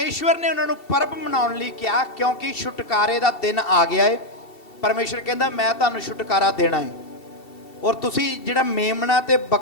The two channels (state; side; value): late; right; 2.7 ms